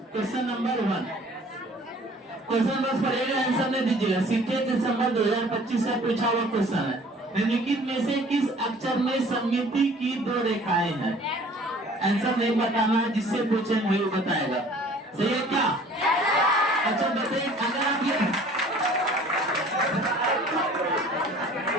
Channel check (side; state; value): both; normal; correlation 0.51